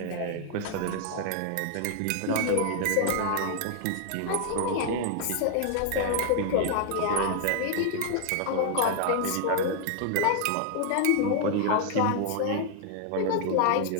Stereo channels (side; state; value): both; different; correlation 0.00